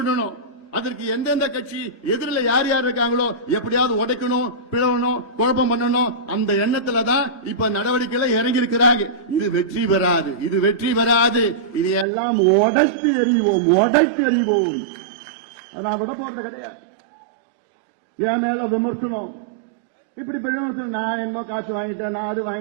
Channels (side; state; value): left; drops out; at 12.1 s